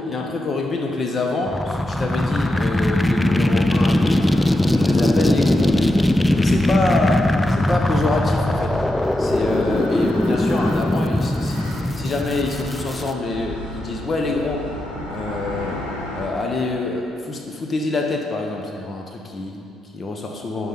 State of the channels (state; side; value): normal; both; correlation 0.87